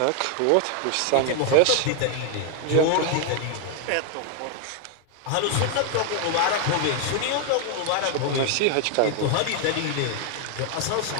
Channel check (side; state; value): both; different; correlation 0.00